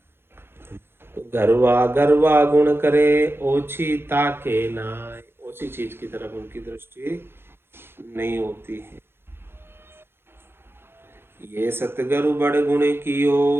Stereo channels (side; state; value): left; late; 0.11 ms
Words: तो गरवा गरवा गुण करे ओछी ताके नाय, ओछी चीज की तरफ उनकी दृष्टि नहीं होती है। ये सतगुरु बड़ गुण